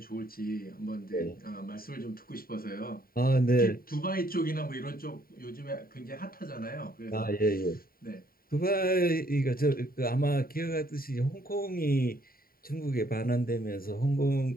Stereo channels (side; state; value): right; late; 0.43 ms